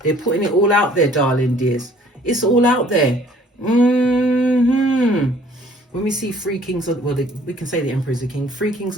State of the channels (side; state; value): both; normal; correlation 0.56